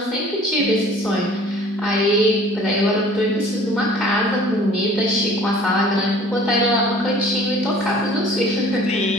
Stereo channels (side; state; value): both; normal; correlation 0.50